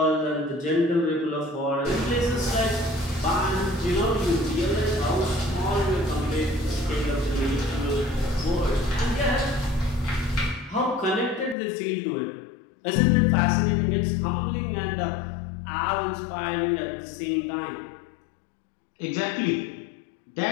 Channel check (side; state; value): right; drops out; at 11.6 s